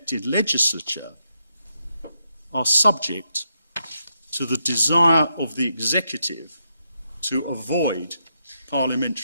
legislature are subject to the desire of the executive to avoid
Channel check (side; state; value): both; inverted; correlation -0.81